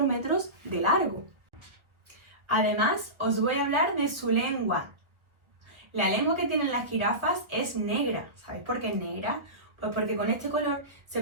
metros de largo. Además, os voy a hablar de su lengua. La lengua que tienen las jirafas es negra. ¿Sabéis por qué es negra? Pues porque con este color se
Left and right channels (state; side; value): late; left; 1.4 ms